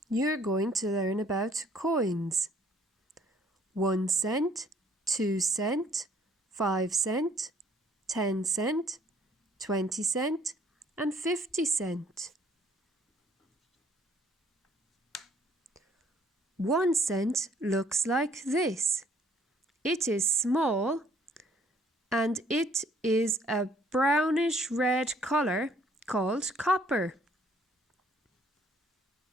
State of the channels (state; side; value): normal; both; correlation 0.61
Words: you're going to learn about coins. 1 cent, 2 cent, 5 cent, 10 cent, 20 cent, and 50 cent. 1 cent looks like this. It is small and it is a brownish red color called copper.